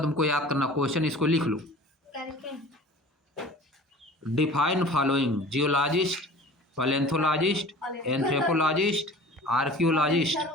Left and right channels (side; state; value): both; normal; correlation 0.43